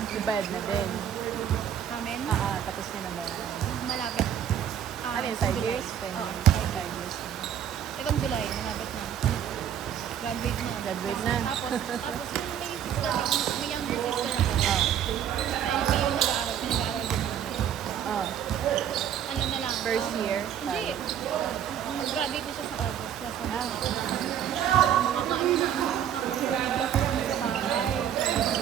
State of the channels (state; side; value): quieter; left; 9.5 dB